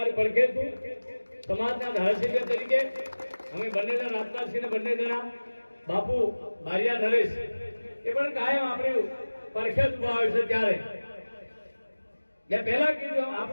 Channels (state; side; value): inverted; both; correlation -1.00